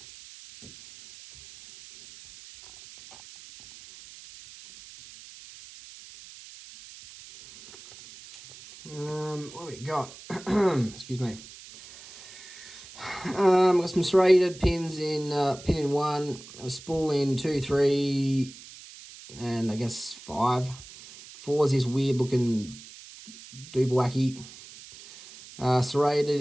What do we got? Excuse me. Got some serrated pins in pin in 1, a spool in 2, 3, and I guess 5. 4 is this weird looking doobwacky. Serrated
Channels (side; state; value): right; noise; hiss, 18 dB below the sound